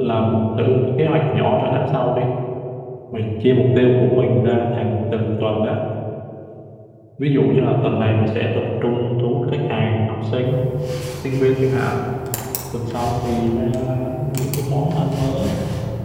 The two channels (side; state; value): both; identical; correlation 1.00